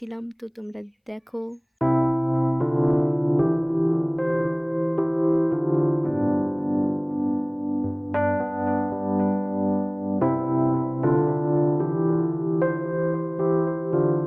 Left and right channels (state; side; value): identical; both; correlation 1.00